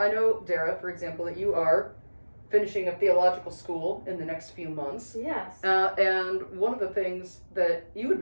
know, Darrah, for example, that you are finishing a theological school in the next few months. Yes. And one of the things that you had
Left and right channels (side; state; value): both; inverted; correlation -1.00